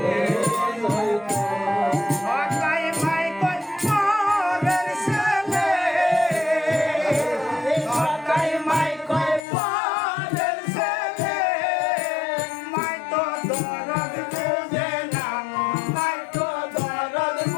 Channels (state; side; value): drops out; right; at 9.4 s